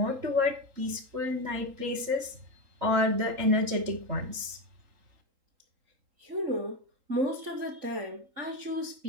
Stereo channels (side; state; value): left; late; 3.8 ms